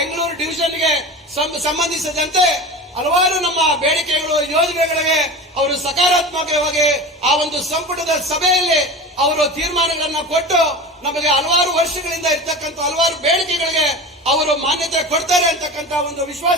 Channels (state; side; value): normal; both; correlation 0.31